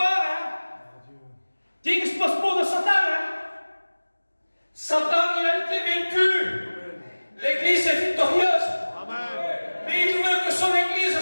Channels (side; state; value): both; inverted; correlation -1.00